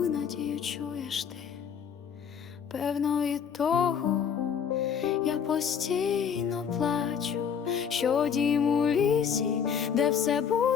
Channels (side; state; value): right; quieter; 7.4 dB